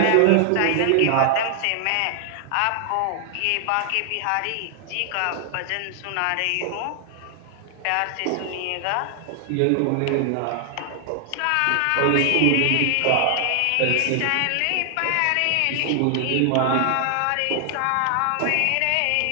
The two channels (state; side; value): different; both; correlation 0.00